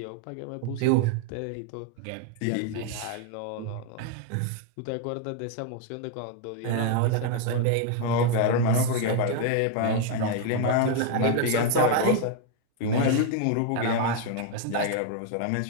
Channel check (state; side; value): different; both; correlation 0.00